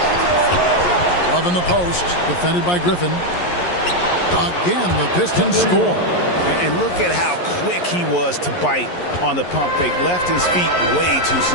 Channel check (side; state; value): right; late; 11 ms